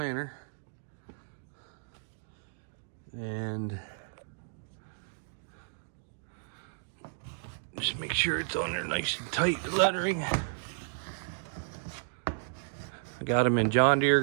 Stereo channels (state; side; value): silent; left; digital silence